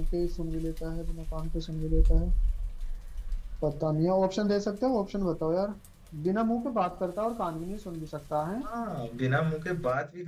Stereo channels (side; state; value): both; identical; correlation 1.00